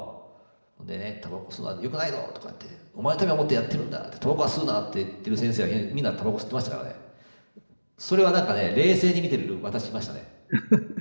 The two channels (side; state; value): both; inverted; correlation -1.00